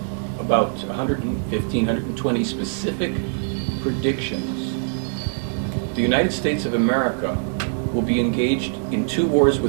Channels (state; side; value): silent; left; digital silence